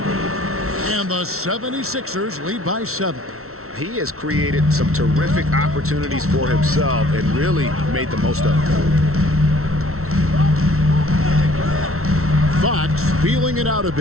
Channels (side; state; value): left; late; 0.63 ms